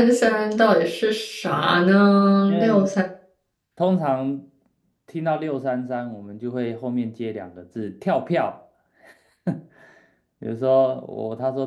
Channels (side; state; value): both; identical; correlation 1.00